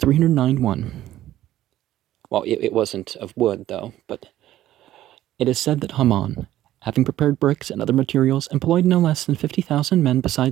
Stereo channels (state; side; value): quieter; left; 13.6 dB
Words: Well, it wasn't of wood, though, but it is said that Haman, having prepared bricks and other materials, employed no less than 50,000 men